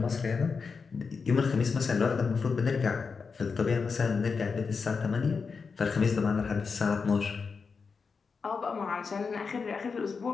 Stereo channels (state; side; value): quieter; right; 5.2 dB